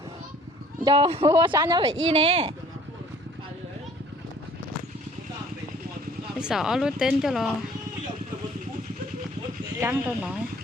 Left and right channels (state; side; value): normal; both; correlation 0.54